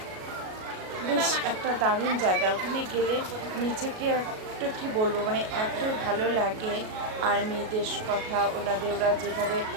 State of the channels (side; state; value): left; late; 37 ms